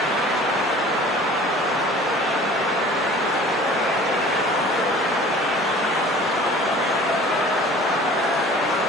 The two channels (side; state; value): both; normal; correlation 0.46